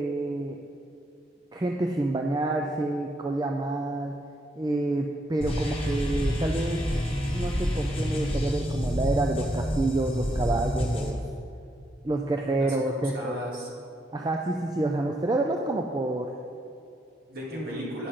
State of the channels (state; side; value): normal; both; correlation 0.77